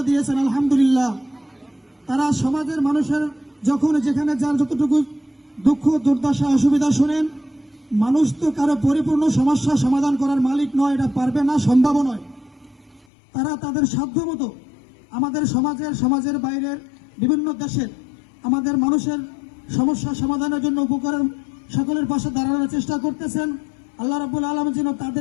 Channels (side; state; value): right; drops out; at 13.1 s